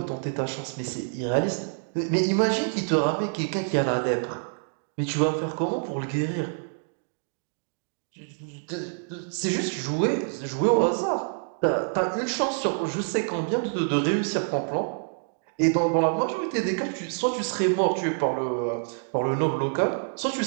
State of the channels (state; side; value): silent; left; digital silence